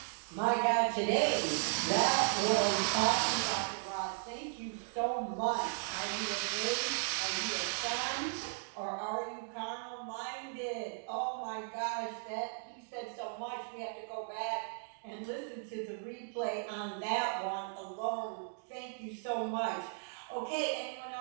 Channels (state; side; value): silent; left; digital silence